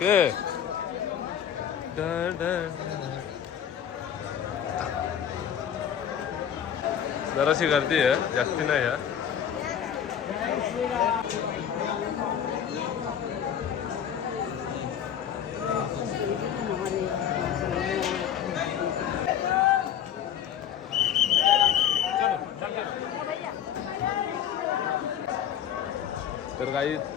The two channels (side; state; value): right; quieter; 9.2 dB